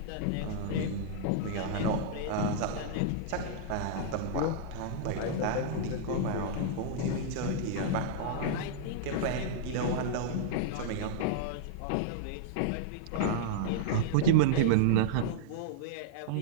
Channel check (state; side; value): different; both; correlation -0.02